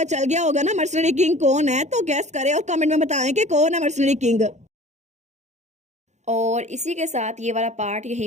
चल गया होगा ना मर्सनरी किंग कौन है। तो गेस करें और कमेंट में बताएं कि कौन है मर्सनरी किंग। और इसी के साथ ये वाला पार्ट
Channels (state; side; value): late; left; 0.33 ms